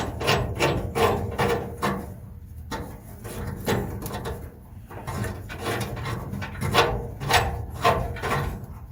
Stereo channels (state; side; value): identical; both; correlation 1.00